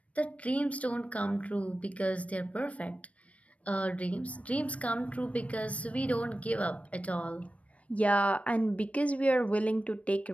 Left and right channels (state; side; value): late; right; 0.065 ms